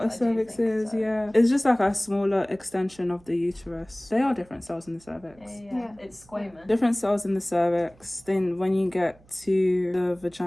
a I do cervix think is. so. Yeah, it's just like a smaller extension of the uterus. They are different cells in the cervix. Yeah. It's squamous. Different cells in the cervix. Then when you get to the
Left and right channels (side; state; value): right; noise; hum, 28 dB below the sound